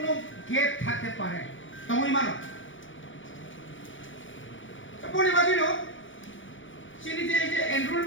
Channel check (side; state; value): right; late; 0.56 ms